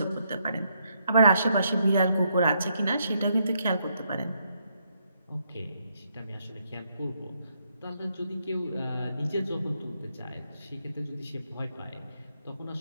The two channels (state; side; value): inverted; both; correlation -0.76